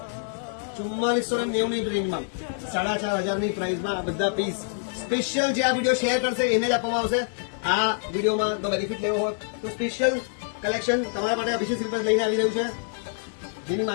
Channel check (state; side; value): silent; right; digital silence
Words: 4490 ની રેન્જમાં 4,500 ની પ્રાઇસમાં આ બધા પીસ સ્પેશિયલ જે આ વિડીયો શેર કરશે એને જ આપવામાં આવશે. આ વિડીયોમાં તો બેનિફિટ લેવો હોય તો સ્પેશિયલ કલેક્શન તમારા માટે અભિષેક સિલ્ક લઈને આવી રહ્યું છે, જેની